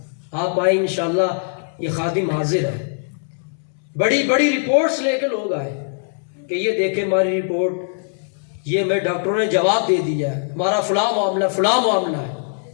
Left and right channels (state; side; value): silent; right; 65 dB below the other